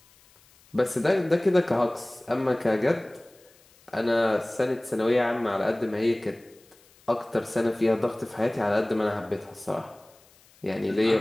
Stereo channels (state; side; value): noise; left; hiss, 29 dB below the sound